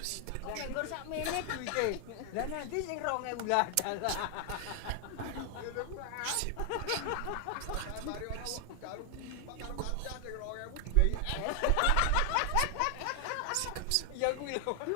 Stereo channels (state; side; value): different; both; correlation 0.00